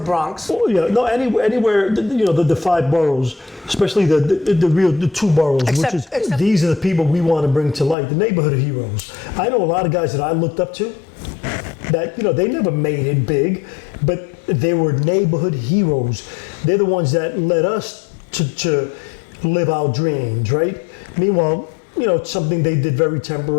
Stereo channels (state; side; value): drops out; right; at 8.0 s